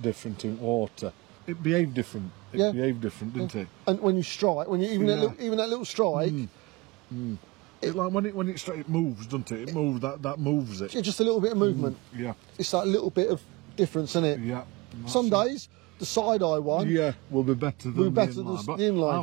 in water. It behaved different. It behaved different, didn't it? And when you strike, even that little strike, It's like when it moves, doesn't it? It moves. That moves it. it's just a little bit of movement. Yeah. It's that little bit of difference in it. Yeah. Some days the side eye one. Yeah, will be better than better the than inline. But the inline.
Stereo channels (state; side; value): quieter; left; 24.0 dB